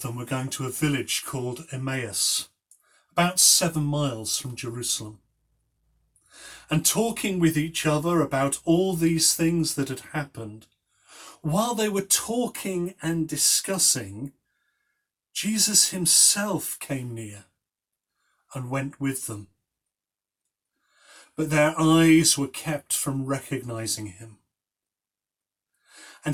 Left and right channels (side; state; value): both; identical; correlation 1.00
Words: them were going to a village called Emmaus, about 7 miles from Jerusalem, and talking with each other about all these things that had happened. While they were talking and discussing, Jesus himself came near and went with them. But their eyes were kept from recognizing him.